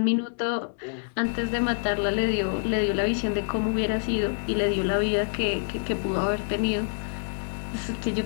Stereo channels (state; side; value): silent; right; digital silence